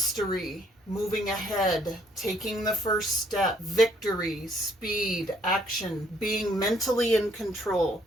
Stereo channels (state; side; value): normal; both; correlation 0.66